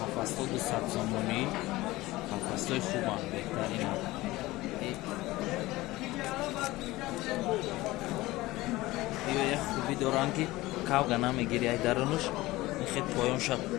Қафасто 200 сомони қафастои хубам беҳтарин як хуби доранд ки кавга намегири ай дарунуш мехед поёнша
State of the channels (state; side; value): quieter; right; 18.9 dB